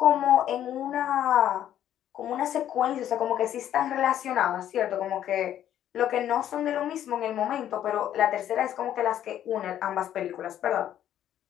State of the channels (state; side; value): quieter; right; 11.1 dB